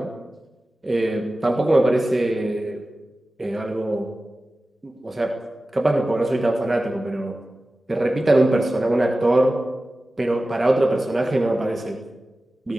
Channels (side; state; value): both; normal; correlation 0.96